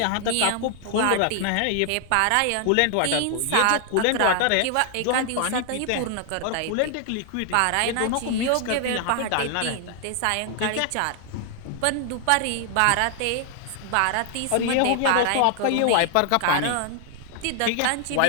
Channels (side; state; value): both; different; correlation 0.00